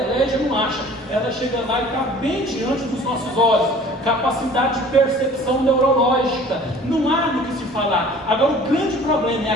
não acha. Ela chega lá e está bem diante dos nossos olhos. Capacidade de percepção neurológica, não há do que se falar. Agora o grande problema, é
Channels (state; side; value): normal; both; correlation 0.48